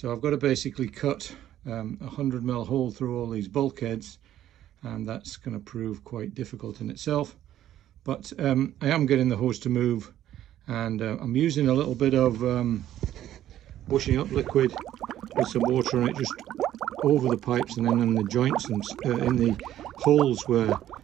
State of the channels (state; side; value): quieter; left; 12.2 dB